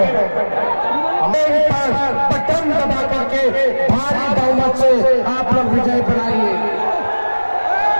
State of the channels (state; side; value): inverted; both; correlation -1.00